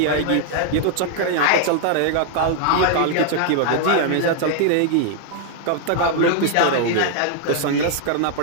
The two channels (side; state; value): both; different; correlation 0.00